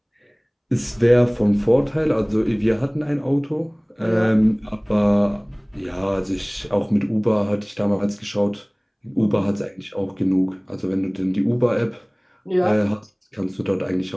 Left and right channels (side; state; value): both; identical; correlation 1.00